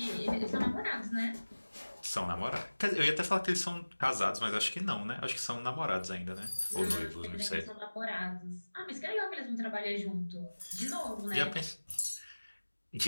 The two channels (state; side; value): inverted; both; correlation -1.00